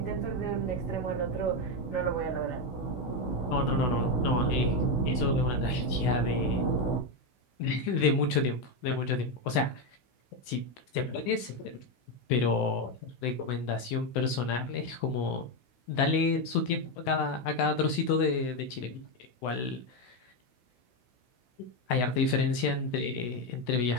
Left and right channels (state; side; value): late; right; 16 ms